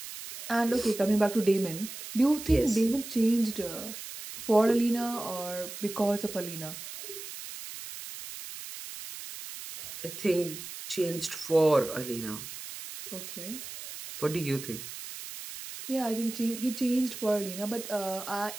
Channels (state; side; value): noise; right; hiss, 11 dB below the sound